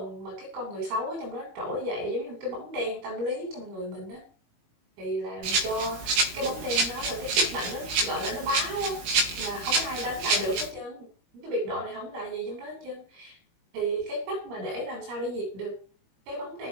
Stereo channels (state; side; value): late; left; 18 ms